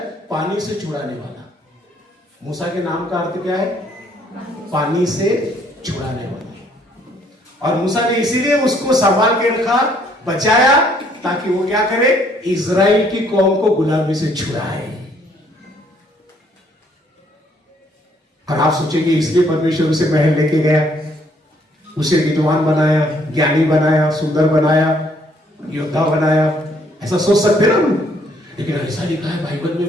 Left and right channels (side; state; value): both; normal; correlation 0.66